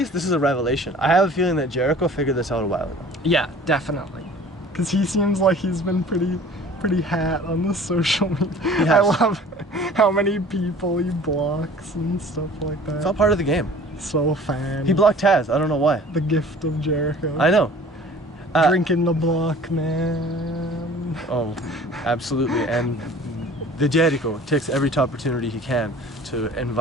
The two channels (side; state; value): both; normal; correlation 0.47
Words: this is a revelation. I have a feeling that Jericho figured this out a while ago. Yeah, definitely. Because he seems like he's been pretty hat on the social media. has. I love how many people he blocks and stuff like that. It's all part of the game. So fan. He blocked Taz. I don't know why. The gift of Jericho. I know. Drinking the block, man. Oh, absolutely. And the Jericho takes every opportunity he can to